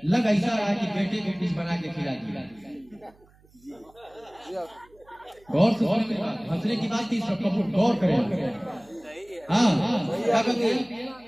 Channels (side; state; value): right; noise; hum, 30 dB below the sound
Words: लग ऐसा रहा है कि बेटे को कुछ बना के खिला दिया। गौर से हंसने की बात थी, सब गौर करें। हाँ, क्या कहते हैं,